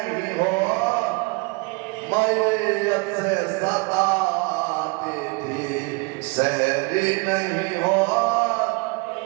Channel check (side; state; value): left; quieter; 29.3 dB